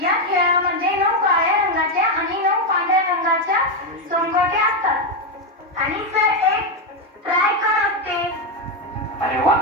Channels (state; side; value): normal; both; correlation 0.07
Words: या खेळामध्ये 9 काळ्या रंगाच्या आणि 9 पांढऱ्या रंगाच्या सोंगट्या असतात आणि सर एक ट्रायकर असते. अरे वा,